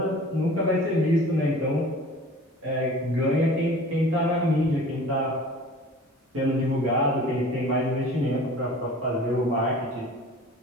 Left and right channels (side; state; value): both; normal; correlation 0.44